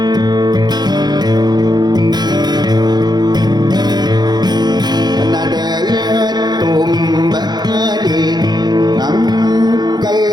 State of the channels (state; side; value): late; left; 0.20 ms